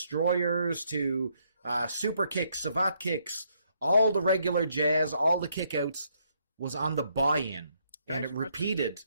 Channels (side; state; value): both; inverted; correlation -0.72